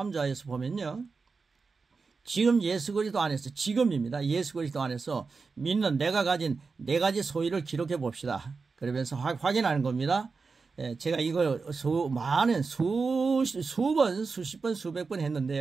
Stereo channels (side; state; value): left; quieter; 4.6 dB